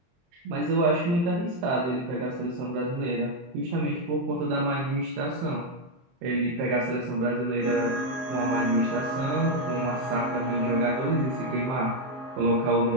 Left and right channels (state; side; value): late; left; 23 ms